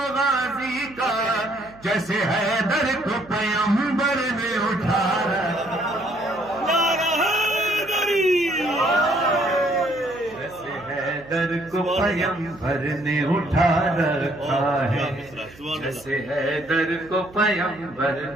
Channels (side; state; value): right; noise; hum, 23 dB below the sound